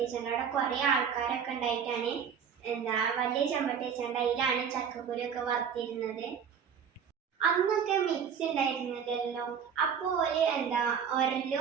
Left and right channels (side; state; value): left; quieter; 7.4 dB